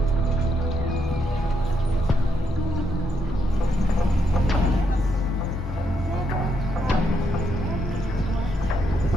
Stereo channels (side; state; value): both; normal; correlation 0.78